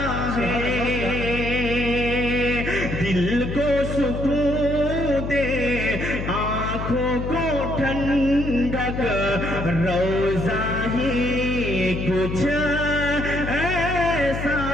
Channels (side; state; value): left; noise; hum, 5 dB below the sound